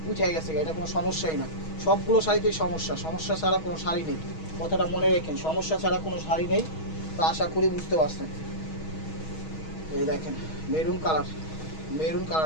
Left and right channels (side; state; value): right; late; 6.3 ms